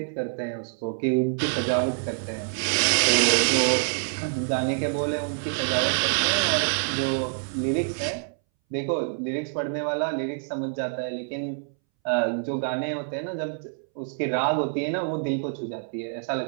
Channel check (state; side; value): silent; left; 61 dB below the other